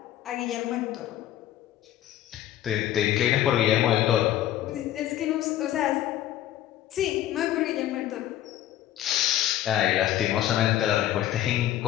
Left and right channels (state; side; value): quieter; right; 12.7 dB